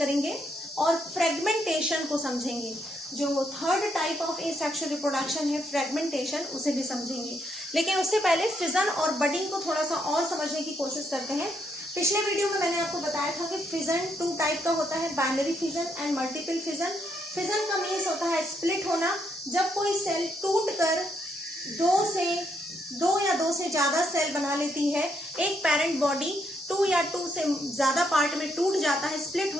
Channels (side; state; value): both; normal; correlation 0.75